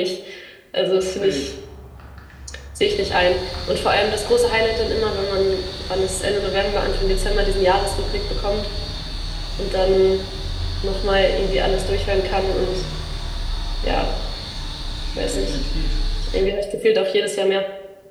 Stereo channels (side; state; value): both; identical; correlation 1.00